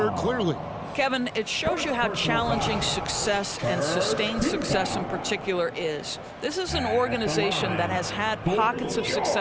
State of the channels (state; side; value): identical; both; correlation 1.00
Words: clearly. Kevin, it shows you how challenging success and sustained success in particular is. This is an organization that has had pockets of